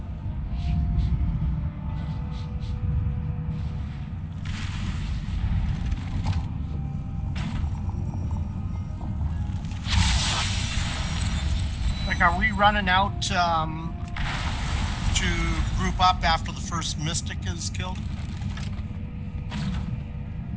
Like, are we running out to group up after the first mystic is killed?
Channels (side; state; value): both; identical; correlation 1.00